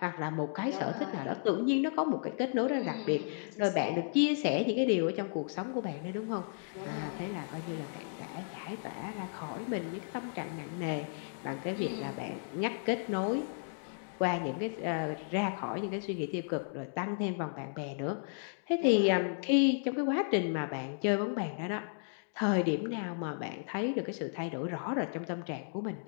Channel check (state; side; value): silent; right; digital silence